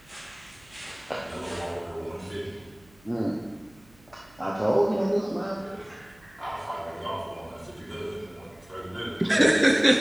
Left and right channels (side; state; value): right; noise; hum, 28 dB below the sound